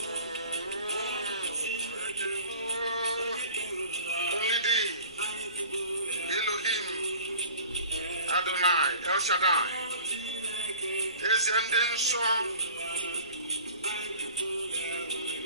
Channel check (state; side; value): inverted; both; correlation -0.45